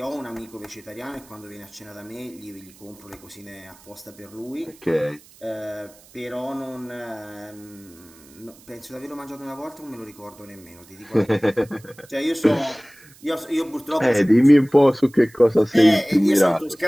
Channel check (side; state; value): right; noise; hiss, 25 dB below the sound